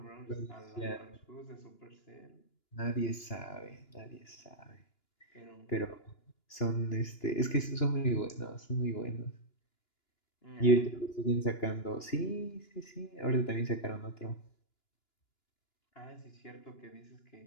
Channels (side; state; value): right; late; 2.9 ms